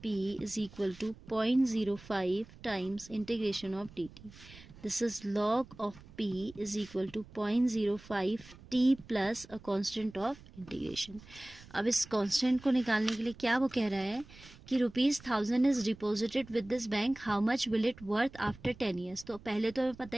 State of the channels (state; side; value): noise; right; rumble, 20 dB below the sound